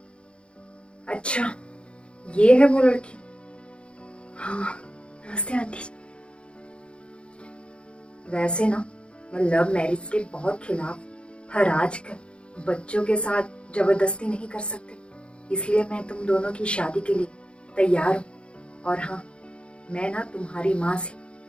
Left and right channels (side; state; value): right; late; 0.057 ms